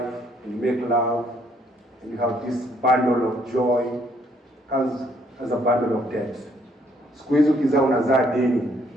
and you make love and you have this bundle of joy, comes as a bundle of debt. Siku hizi ukizaa unazaa deni,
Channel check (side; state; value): both; normal; correlation 0.67